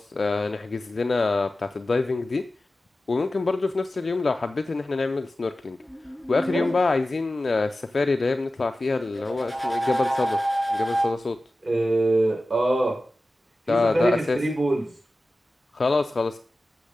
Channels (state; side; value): normal; both; correlation 0.95